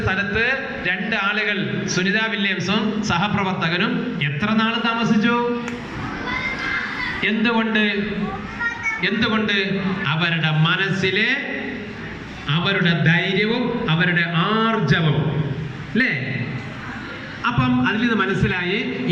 സ്ഥലത്ത് 2 ആളുകൾ, സുനിത വില്യംസും സഹപ്രവർത്തകനും എത്ര നാൾ താമസിച്ചു? എന്തുകൊണ്ട്? അവരുടെ മനസ്സിലെ അവരുടെ ധൈര്യവും അവരുടെ ആർജവും അല്ലേ? അപ്പം അതിൽ നിന്ന് മനസ്സിലായി,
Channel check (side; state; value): both; identical; correlation 1.00